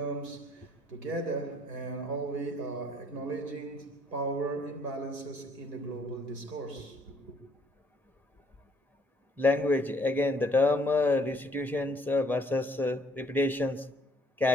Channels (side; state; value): both; normal; correlation 0.63